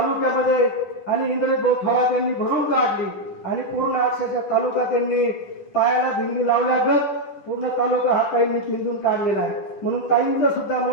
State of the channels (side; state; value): right; late; 10 ms